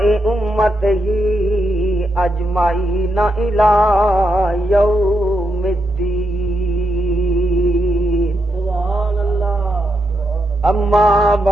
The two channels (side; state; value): both; normal; correlation 0.83